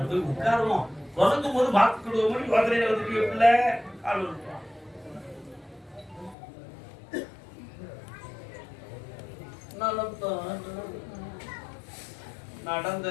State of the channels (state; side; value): drops out; right; at 6.4 s